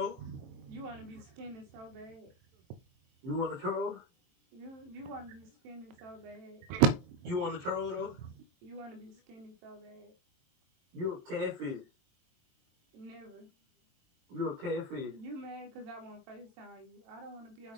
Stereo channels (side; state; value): left; late; 23 ms